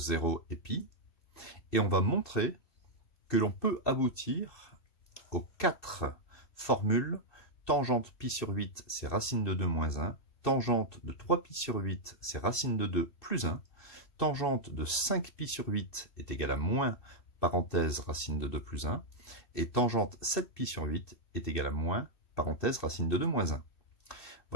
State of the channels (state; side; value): late; right; 2.6 ms